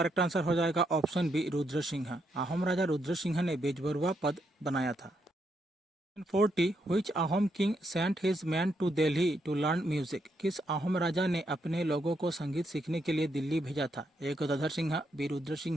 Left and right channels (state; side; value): normal; both; correlation 0.78